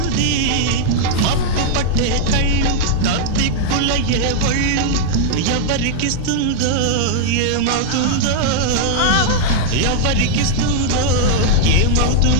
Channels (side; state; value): both; different; correlation -0.01